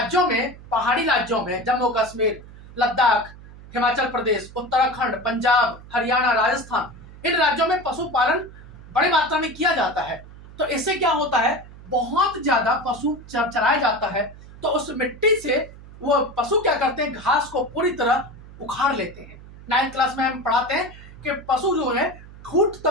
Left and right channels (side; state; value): right; noise; hum, 18 dB below the sound